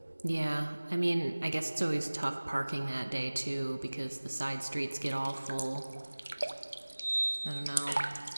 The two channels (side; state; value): both; inverted; correlation -1.00